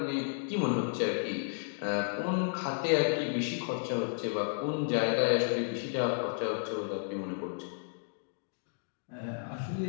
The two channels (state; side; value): silent; right; digital silence